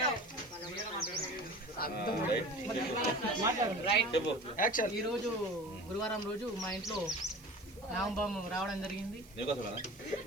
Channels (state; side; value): noise; right; hiss, 24 dB below the sound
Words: ఈ రోజు గురువారం రోజు మా ఇంట్లో నామబాము రావడం జరిగింది.